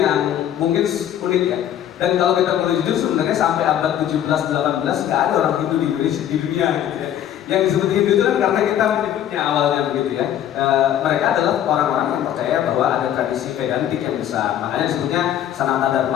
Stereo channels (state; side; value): quieter; right; 10.8 dB